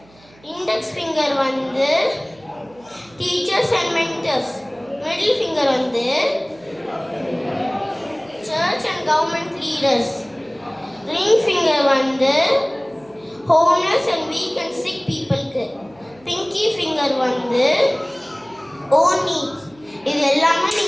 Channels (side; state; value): right; noise; hum, 28 dB below the sound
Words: index finger வந்து teachers and mentors, middle finger வந்து church and government leaders, ring finger வந்து homeless and weak and sick பீப்புளுக்கு, பிங்கி ஃபிங்கர் வந்து ஓன் நீட்ஸ். இது எல்லாமே